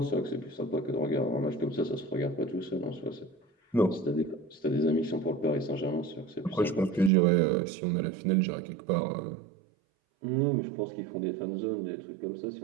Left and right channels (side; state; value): left; drops out; at 7.1 s